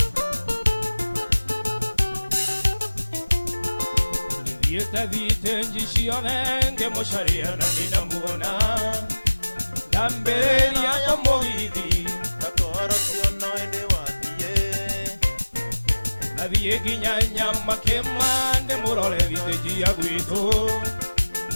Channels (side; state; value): both; inverted; correlation -1.00